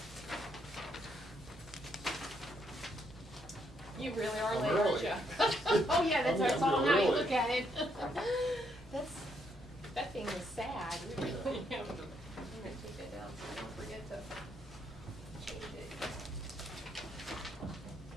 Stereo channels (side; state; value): both; normal; correlation 0.74